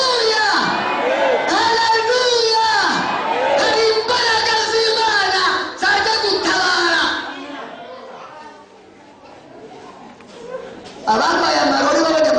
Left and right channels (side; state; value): both; identical; correlation 1.00